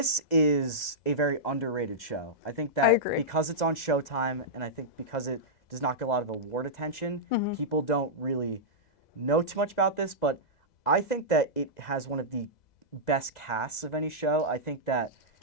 is a very underrated show. I think that because it's on Showtime, and I think because it does not get a lot of award attention, people don't really know too much about this, but I think that it has one of the best casts of any show. I think that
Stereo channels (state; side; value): late; right; 2.0 ms